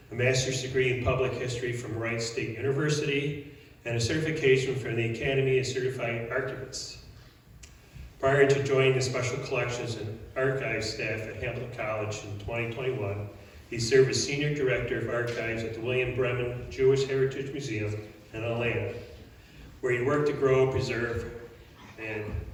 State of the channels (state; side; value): identical; both; correlation 1.00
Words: a master's degree in public history from Wright State University, and a certification from the Academy of Certified Archivists. Prior to joining the Special Collections and Archives staff at Hamilton College in 2021, he served as Senior Director of Archives at the William Bremen Jewish Heritage Museum in Atlanta, where he worked to grow, preserve, and